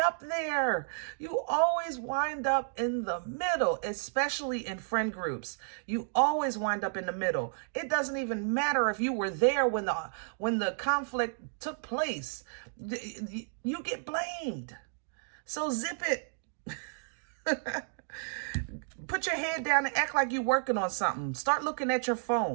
there. You always wind up in the middle, especially in friend groups. You always wind up in the middle. It doesn't even matter if you were there when the conflict took place. You get blamed. So zip it. Put your head down and act like you're working on something. Start looking at your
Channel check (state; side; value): silent; left; digital silence